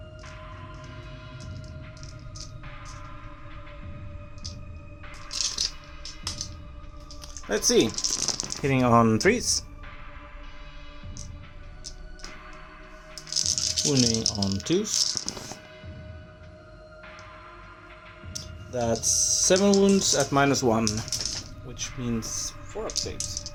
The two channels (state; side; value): identical; both; correlation 1.00